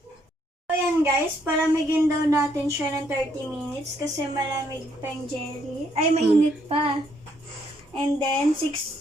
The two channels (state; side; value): normal; both; correlation 0.71